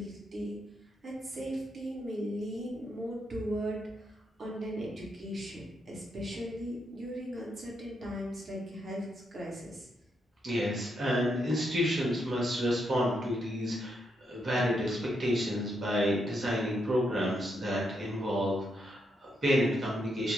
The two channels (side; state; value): both; normal; correlation 0.80